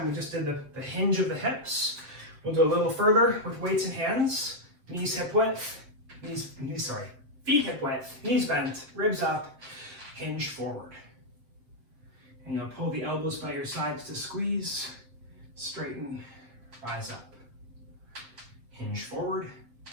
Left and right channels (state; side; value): late; left; 7.6 ms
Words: we just did the hinge of the hips. We'll do a little further with weights and hands. Knees hip width, feet hip width, knees bent, ribs up, hinge forward. And you'll pull the elbows by your sides to squeeze, straighten, rise up. Hinge forward,